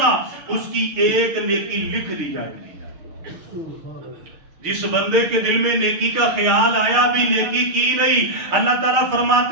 اس کی ایک نیکی لکھ دی جائے گی۔ جس بندے کے دل میں نیکی کا خیال آیا بھی نیکی کی نہیں، اللہ تعالیٰ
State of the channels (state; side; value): late; left; 6.5 ms